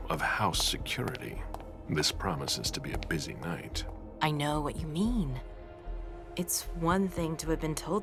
of house security. This promises to be a busy night. I know what you mean. It's one thing to have been told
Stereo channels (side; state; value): both; identical; correlation 1.00